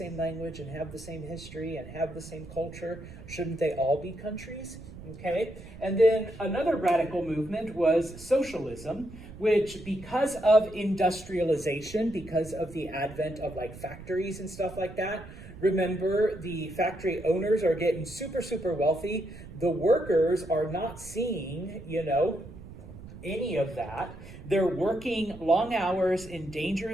language and have the same history and have the same culture, shouldn't they all be countries? Okay, and then another radical movement was socialism, which because of industrialization, because of the advent of like factories and stuff like that, remember the factory owners are getting super, super wealthy. The workers are not seeing, any of that. They're working long hours in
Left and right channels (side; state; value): right; noise; rumble, 15 dB below the sound